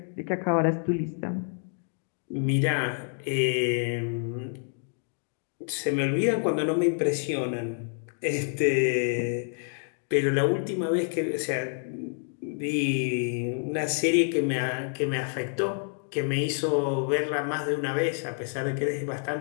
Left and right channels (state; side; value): silent; right; 59 dB below the other